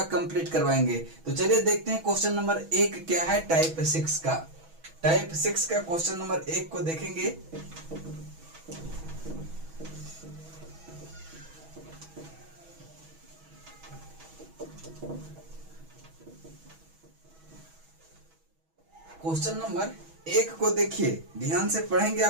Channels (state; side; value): late; left; 6.2 ms